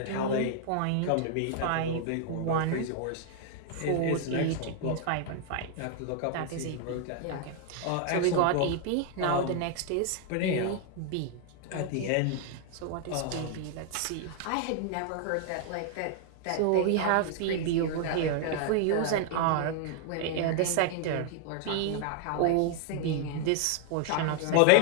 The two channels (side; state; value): both; different; correlation 0.00